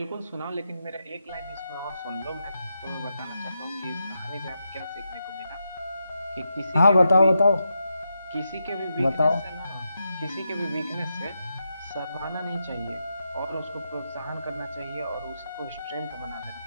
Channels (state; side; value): inverted; both; correlation -0.86